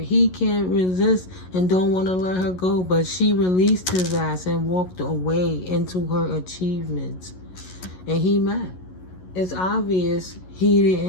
He can't resist and don't want to let her go. But she released his ass and walked away into her achievements. And he mad. It's obvious he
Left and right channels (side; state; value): right; late; 11 ms